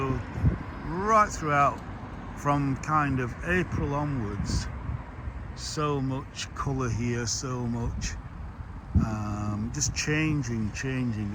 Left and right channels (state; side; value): identical; both; correlation 1.00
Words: right throughout, from kind of April onwards, so much colour here, so much just changing